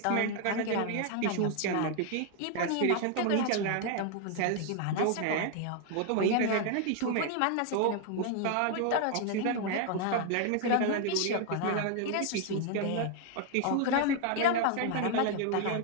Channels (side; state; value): both; different; correlation 0.00